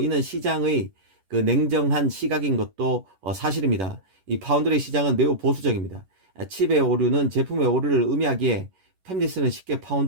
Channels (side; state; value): left; late; 11 ms